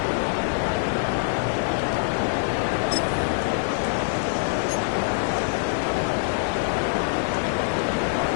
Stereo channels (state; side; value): silent; right; digital silence